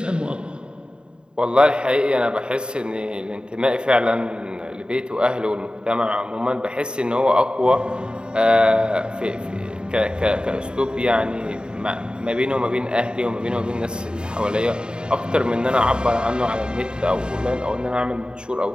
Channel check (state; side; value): late; left; 0.049 ms